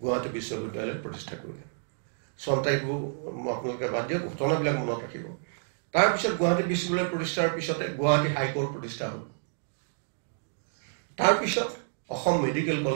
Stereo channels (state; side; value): silent; left; digital silence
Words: বিশ্ববিদ্যালয় প্ৰতিষ্ঠা কৰিলে। চন তাৰিখবোৰ আপোনালোকে বাদ দিয়ক, ঘটনাবিলাক মনত ৰাখিব। তাৰপিছত গুৱাহাটী বিশ্ববিদ্যালয় প্ৰতিষ্ঠাৰ পিছতে গুৱাহাটী হাইকোৰ্ট প্ৰতিষ্ঠা হ'ল। তাৰপিছত অসম মেডিকেল